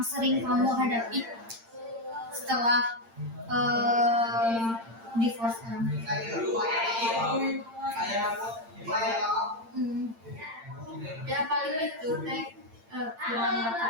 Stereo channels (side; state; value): left; late; 8.8 ms